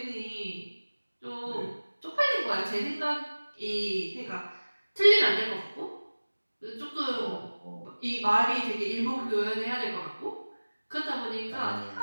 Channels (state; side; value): inverted; both; correlation -1.00